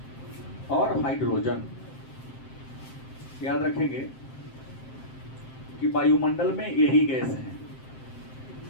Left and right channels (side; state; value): right; late; 7.7 ms